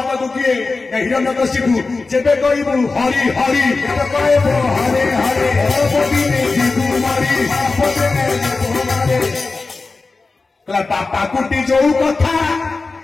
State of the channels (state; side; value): quieter; right; 3.9 dB